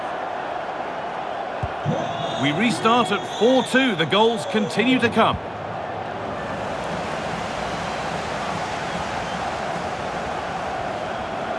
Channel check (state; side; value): identical; both; correlation 1.00